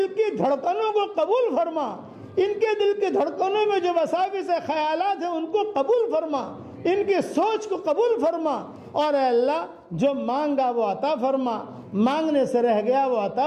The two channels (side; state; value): both; identical; correlation 1.00